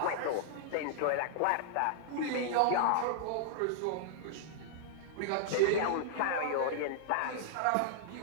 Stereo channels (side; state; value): both; different; correlation -0.01